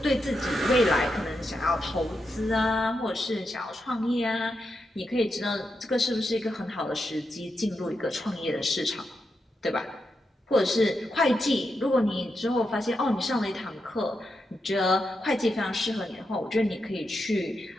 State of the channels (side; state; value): both; normal; correlation 0.85